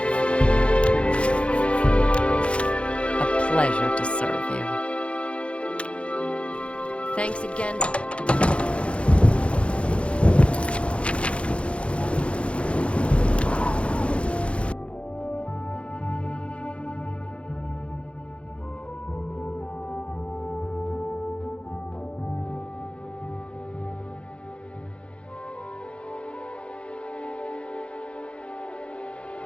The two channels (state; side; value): late; right; 0.060 ms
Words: A pleasure to serve you. Thanks again.